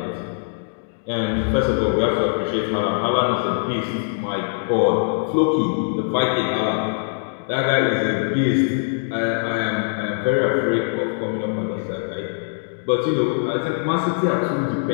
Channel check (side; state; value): right; silent; digital silence